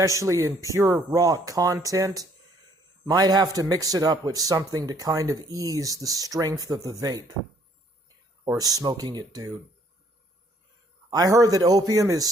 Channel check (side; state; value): both; normal; correlation 0.64